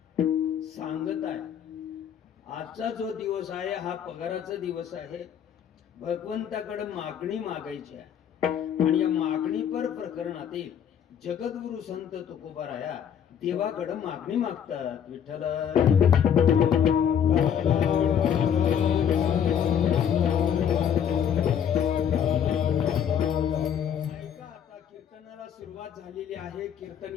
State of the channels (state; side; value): quieter; right; 8.6 dB